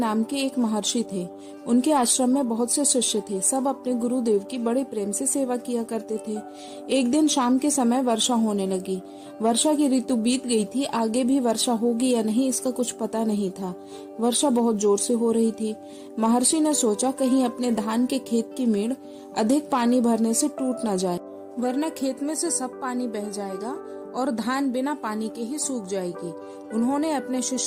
के एक महर्षि थे। उनके आश्रम में बहुत से शिष्य थे। सब अपने गुरुदेव की बड़े प्रेम से सेवा किया करते थे। एक दिन शाम के समय वर्षा होने लगी। वर्षा की ऋतु बीत गई थी। आगे भी वर्षा होगी या नहीं इसका कुछ पता नहीं था। वर्षा बहुत जोर से हो रही थी। महर्षि ने सोचा कहीं अपने धान के खेत की मेड़ अधिक पानी भरने से टूट न जाए, वरना खेत में से सब पानी बह जाएगा और धान बिना पानी के ही सूख जाएगी। उन्होंने अपने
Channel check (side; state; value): both; identical; correlation 1.00